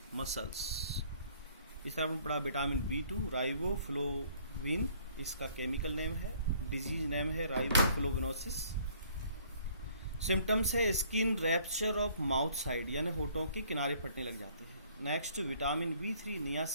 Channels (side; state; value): both; inverted; correlation -0.59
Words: muscles. इस तरह आपने पढ़ा विटामिन B2 राइबोफ्लोविन, इसका केमिकल नेम है, डिजीज नेम है राइबोफ्लोविनोसिस। सिम्टम्स है skin rupture of mouth side, यानी होठों के किनारे फटने लग जाते हैं। Next vitamin B3